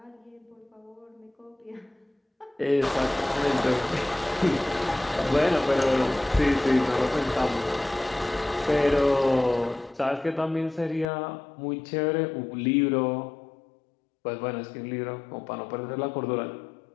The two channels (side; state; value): right; drops out; at 11.1 s